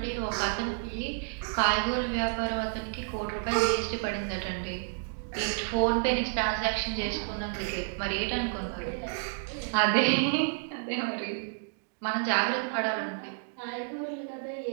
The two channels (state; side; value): silent; left; digital silence